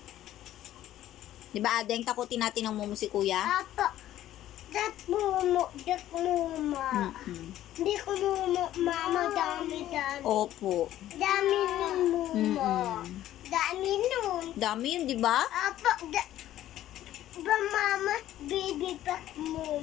Di ba, Adeng, takutin natin ng mumo si kuya? Apa, dat mumo. Hindi ko mumo, mama, dami. Opo. Dami ng mumo. Dami nun. Dami yun, di ba? Apa, ba mama, baby pa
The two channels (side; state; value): right; quieter; 13.1 dB